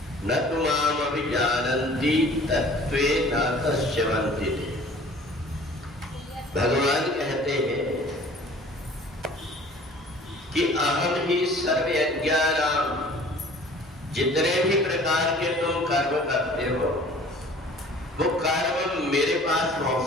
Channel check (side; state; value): both; normal; correlation 0.49